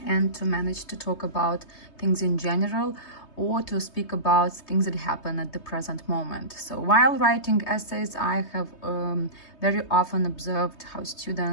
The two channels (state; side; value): late; right; 3.2 ms